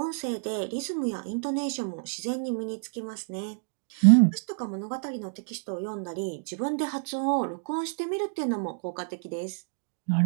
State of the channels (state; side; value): silent; left; digital silence